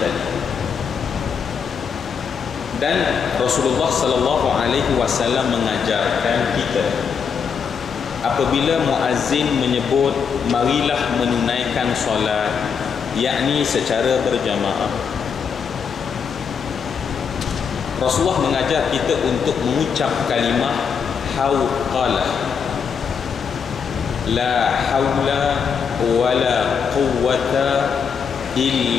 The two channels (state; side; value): quieter; right; 6.5 dB